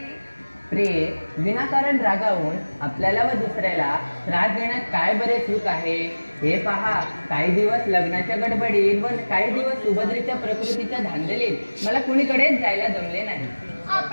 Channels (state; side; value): inverted; both; correlation -1.00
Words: प्रिय, विनाकारण रागावून आपल्याला व दुसऱ्याला त्रास देण्यात काय बरे सुख आहे? हे पहा, काही दिवस लग्नाच्या गडबडीत व काही दिवस सुभद्रेच्या प्रकृतीच्या धांदलीत मला कुणीकडेच जायला जमले नाही.